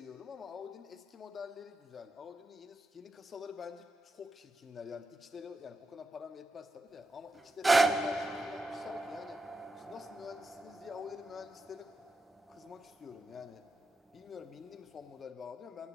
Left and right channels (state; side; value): normal; both; correlation 0.87